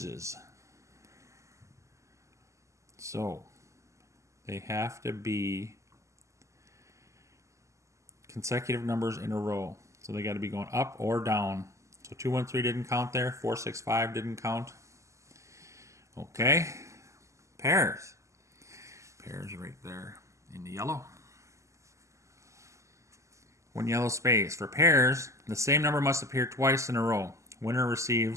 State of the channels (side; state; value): left; late; 0.15 ms